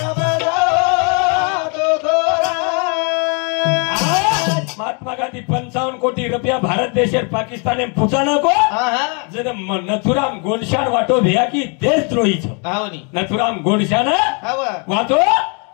महात्मा गांधी 55 कोटी रुपया भारत देशेर पाकिस्ताने पूछाना को जर नथुराम गोडशान वाटो भैया की देशद्रोही छ नथुराम गोडशान वाटो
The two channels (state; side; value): quieter; right; 36.2 dB